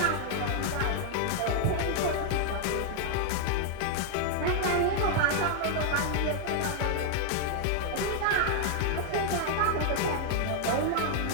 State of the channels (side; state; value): both; different; correlation 0.00